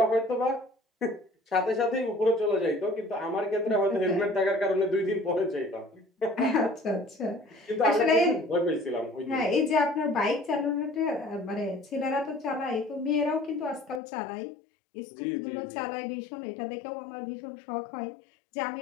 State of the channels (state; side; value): drops out; right; at 14.0 s